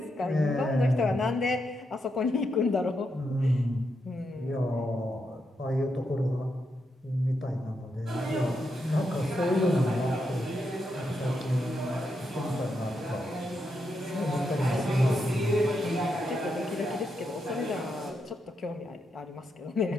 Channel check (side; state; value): both; normal; correlation 0.83